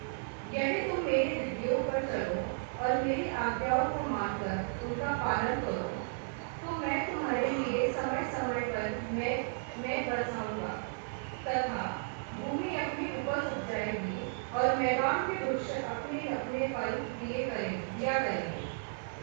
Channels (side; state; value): left; silent; digital silence